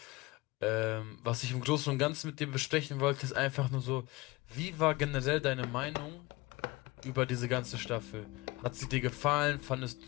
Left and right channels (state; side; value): quieter; right; 22.1 dB